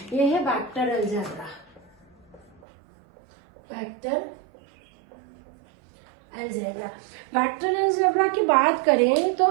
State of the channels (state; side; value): drops out; left; at 2.6 s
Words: ये है vector algebra. Vector algebra, vector algebra की बात करें तो